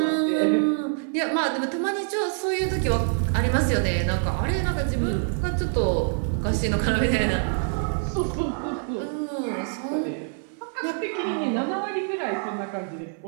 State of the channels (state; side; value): silent; left; 56 dB below the other